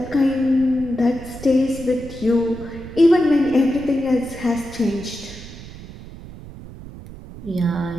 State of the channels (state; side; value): noise; right; rumble, 15 dB below the sound